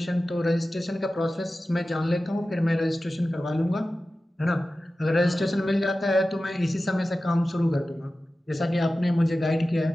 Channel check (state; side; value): normal; both; correlation 0.95